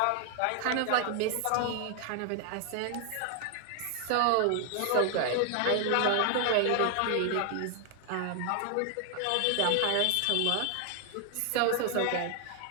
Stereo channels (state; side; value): different; both; correlation 0.00